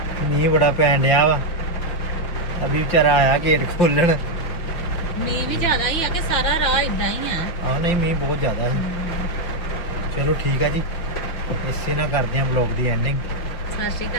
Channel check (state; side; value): late; right; 5.7 ms